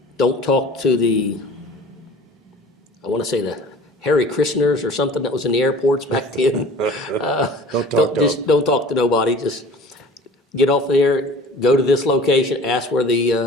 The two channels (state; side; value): normal; both; correlation 0.44